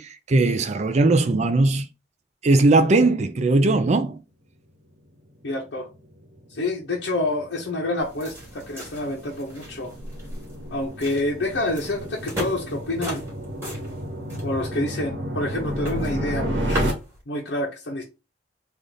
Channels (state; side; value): normal; both; correlation 0.51